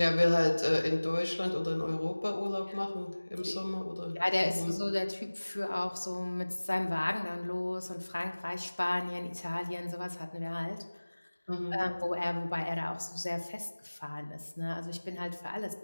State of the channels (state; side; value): inverted; both; correlation -1.00